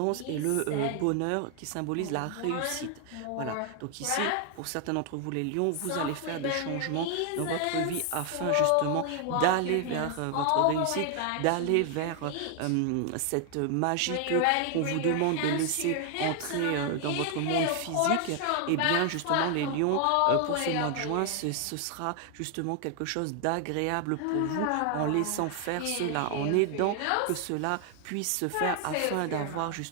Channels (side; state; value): both; different; correlation 0.00